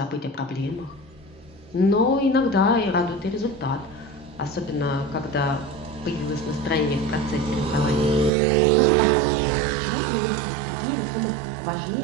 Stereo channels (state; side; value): drops out; left; at 8.3 s